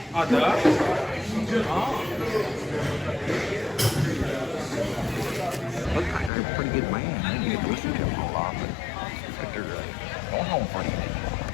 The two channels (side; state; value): right; drops out; at 6.3 s